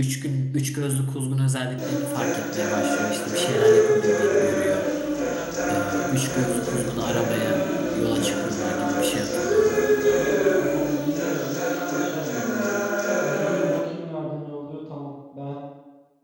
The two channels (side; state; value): both; identical; correlation 1.00